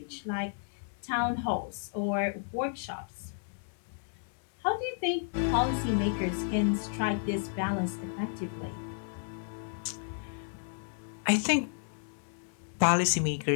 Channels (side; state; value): right; silent; 56 dB below the other